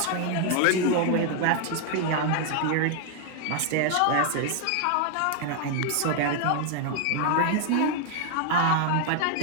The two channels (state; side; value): different; both; correlation 0.00